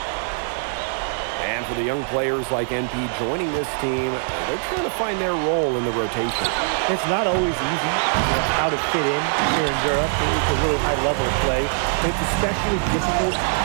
And for the young players like NP joining this team, they're trying to find their role in the rotation. It's not always easy how to fit in here in Europe. It's a really high level of play. It's especially difficult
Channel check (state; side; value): silent; left; 64 dB below the other